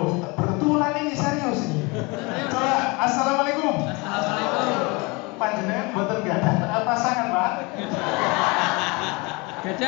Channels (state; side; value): quieter; right; 27.0 dB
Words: betulan ini serius ini. Coba assalamualaikum. Assalamualaikum. Panjenengan mboten gadah pasangan, Pak.